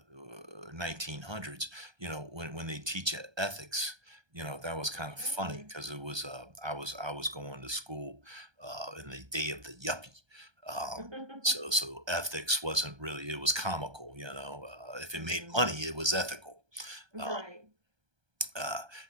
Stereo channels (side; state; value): left; late; 1.3 ms